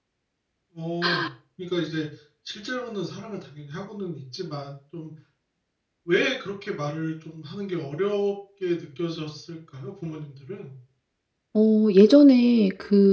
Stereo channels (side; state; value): both; identical; correlation 1.00